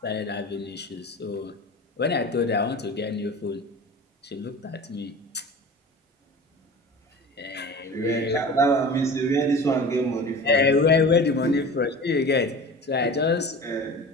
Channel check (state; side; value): normal; both; correlation 0.36